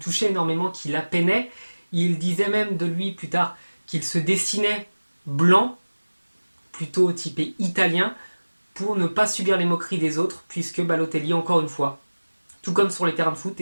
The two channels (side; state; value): both; inverted; correlation -1.00